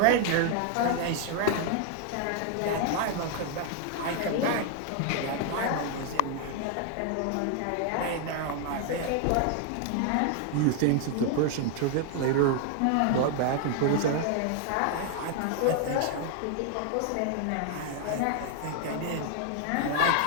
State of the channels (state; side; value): different; both; correlation 0.00